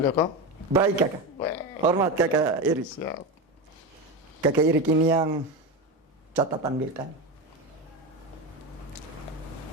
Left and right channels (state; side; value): normal; both; correlation 0.19